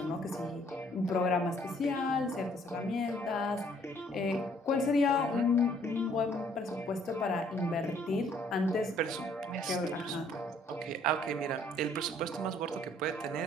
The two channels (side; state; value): both; normal; correlation 0.62